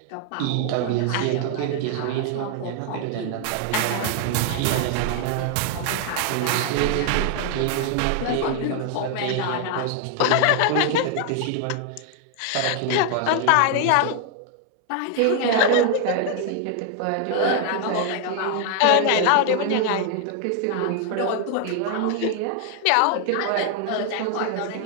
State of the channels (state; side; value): different; both; correlation 0.00